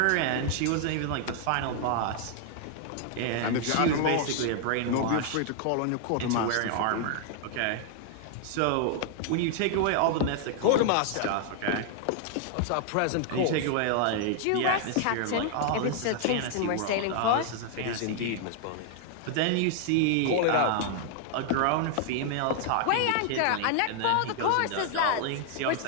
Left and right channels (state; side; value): different; both; correlation 0.00